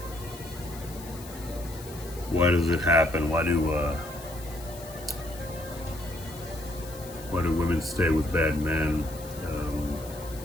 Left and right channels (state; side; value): noise; left; hiss, 17 dB below the sound